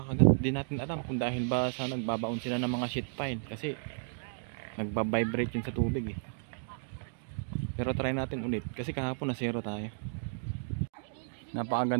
Hindi natin alam kung dahil ba sa nagbabaon sila ng mga sheet pile kasi nagbabibrate yun sa tubig eh. Pero try natin ulit kasi kahapon na zero tayo.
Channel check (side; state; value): left; silent; digital silence